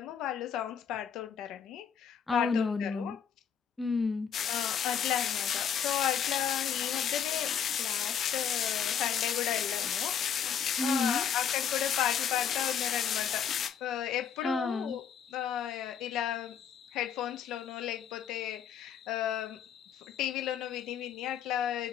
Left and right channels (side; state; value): right; quieter; 8.0 dB